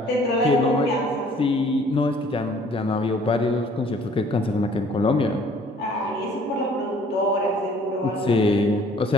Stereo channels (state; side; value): normal; both; correlation 0.56